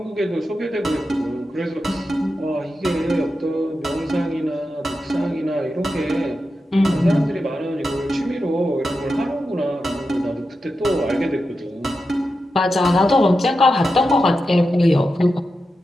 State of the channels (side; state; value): both; normal; correlation 0.89